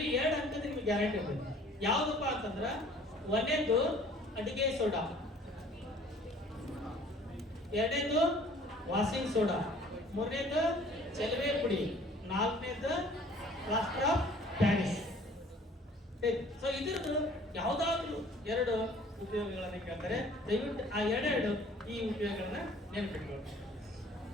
2 ಅಂಕದ ನಿಮ್ಗೆ ಗ್ಯಾರಂಟಿ ಇರ್ತದೆ. ಯಾವ್ದಪ್ಪ ಅಂತಂದ್ರ 1ನೇದು ಅಡಿಗೆ ಸೋಡಾ, 2ನೇದು ವಾಷಿಂಗ್ ಸೋಡಾ, 3ನೇದು ಚೆಲುವೆ ಪುಡಿ, 4ನೇದು ಪ್ಲಾಸ್ಟರ್ ಆಫ್ ಪ್ಯಾರಿಸ್. ಸೊ ಇದ್ರದ್ದು ಯಾವ್ದಾದ್ರು 2 ಉಪಯೋಗಗಳನ್ನ ಕೇಳ್ತಾರೆ. ದಯವಿಟ್ಟು ಆ 2 ಈ ಉಪಯೋಗಗಳನ್ನ ನೆನಪಿಟ್ಕೊಳ್ಳಿ.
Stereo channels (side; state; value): both; normal; correlation 0.53